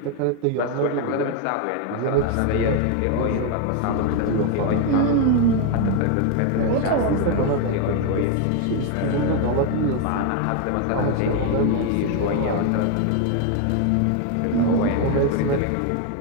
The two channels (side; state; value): both; different; correlation 0.01